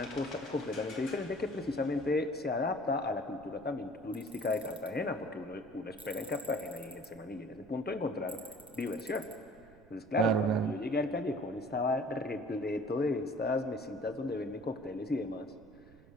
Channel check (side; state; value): right; noise; rumble, 23 dB below the sound